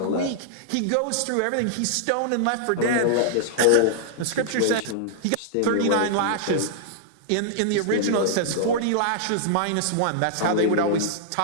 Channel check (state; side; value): different; both; correlation -0.01